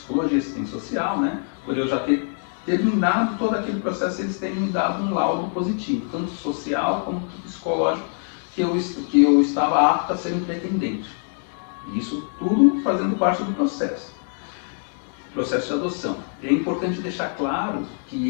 e assistência social, né? Por eu já ter terminado todo aquele processo, eles terem me dado um laudo positivo, tanto social como psicológico, que eu estava apto a ser um pretendente. Isso tudo fazendo parte do processo de adoção. É importante deixar claro que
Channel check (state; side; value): silent; right; 58 dB below the other